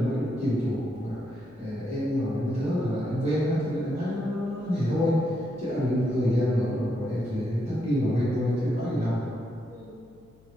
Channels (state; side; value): noise; left; hum, 29 dB below the sound